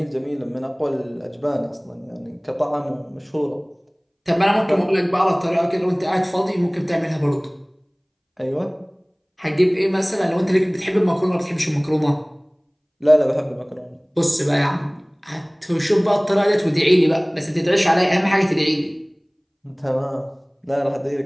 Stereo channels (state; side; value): identical; both; correlation 1.00